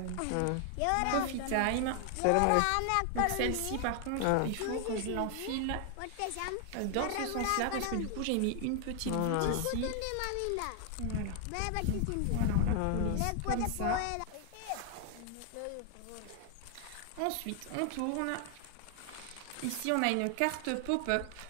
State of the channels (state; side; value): different; both; correlation 0.00